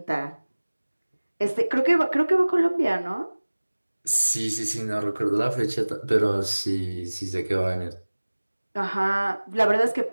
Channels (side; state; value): both; inverted; correlation -1.00